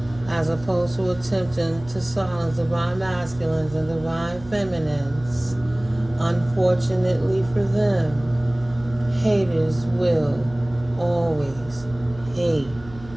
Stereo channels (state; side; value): noise; right; hum, 18 dB below the sound